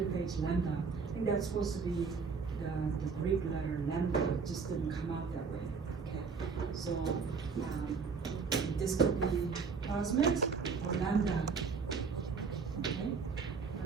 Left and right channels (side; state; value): left; quieter; 5.2 dB